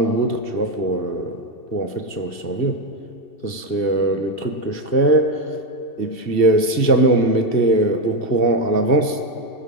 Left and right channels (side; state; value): right; late; 2.7 ms